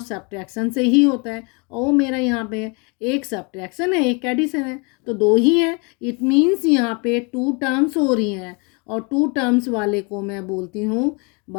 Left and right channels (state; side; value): quieter; right; 31.8 dB